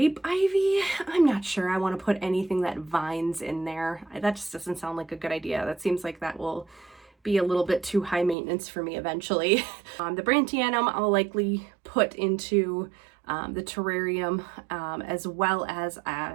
ivy. I'm not sure. I want to put anything that vines in there. That just doesn't sound like a good idea. That seems like that will be a little bit too high maintenance for me eventually. The brantianum I'll likely put into the terrarium, as well as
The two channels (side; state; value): left; drops out; at 8.3 s